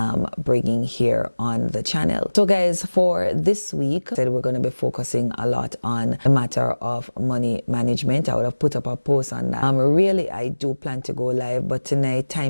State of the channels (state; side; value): inverted; both; correlation -1.00